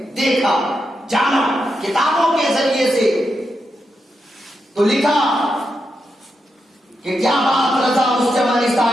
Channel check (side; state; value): both; normal; correlation 0.86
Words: دیکھا جانا کتابوں کے ذریعے سے تو لکھا کہ کیا بات رضا اس